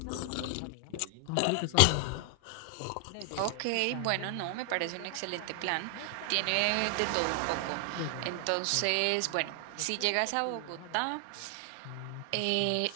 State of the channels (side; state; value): both; different; correlation 0.00